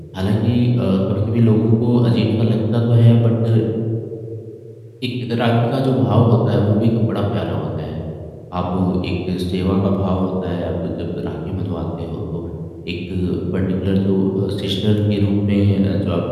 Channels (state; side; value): identical; both; correlation 1.00